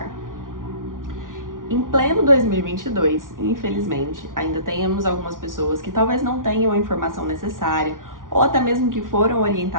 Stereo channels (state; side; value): late; left; 0.89 ms